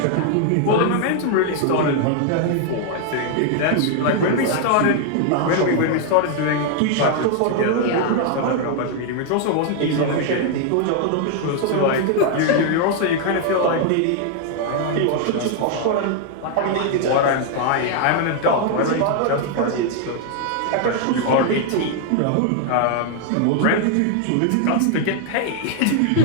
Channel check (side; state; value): both; different; correlation 0.00